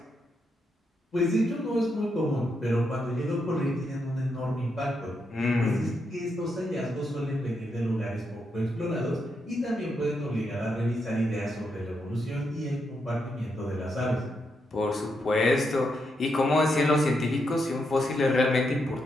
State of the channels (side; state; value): both; normal; correlation 0.81